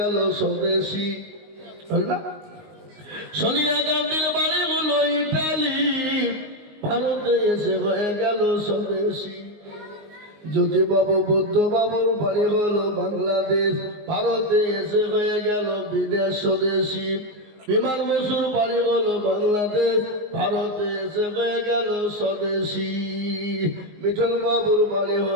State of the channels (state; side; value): late; left; 19 ms